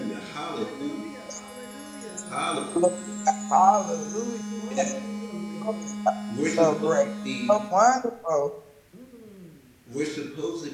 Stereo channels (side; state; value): both; identical; correlation 1.00